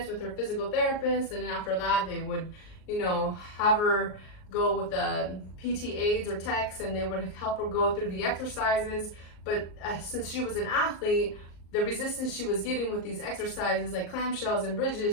with her physical therapist, and then after that they would, have her go with the PT aides or techs, and they would help her go through the exercises. But since she was an athlete, the resistance she was getting with these exercises like clamshells and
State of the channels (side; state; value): right; late; 38 ms